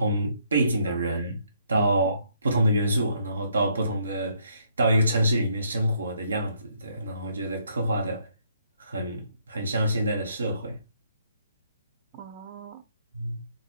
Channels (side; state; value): both; inverted; correlation -0.70